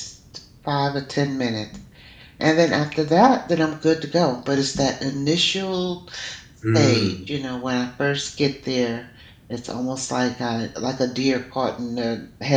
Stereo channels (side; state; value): both; identical; correlation 1.00